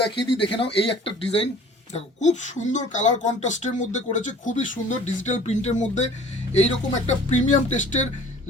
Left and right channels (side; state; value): both; normal; correlation 0.49